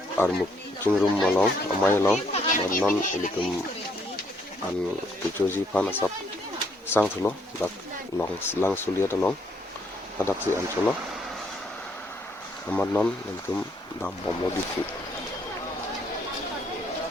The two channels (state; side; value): normal; both; correlation 0.69